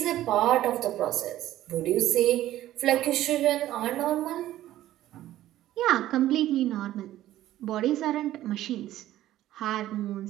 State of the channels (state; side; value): quieter; left; 13.9 dB